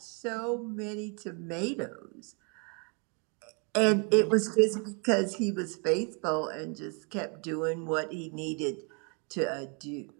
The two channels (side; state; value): left; quieter; 36.0 dB